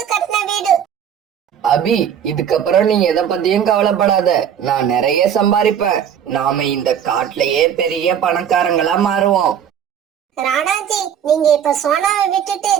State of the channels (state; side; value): quieter; left; 8.8 dB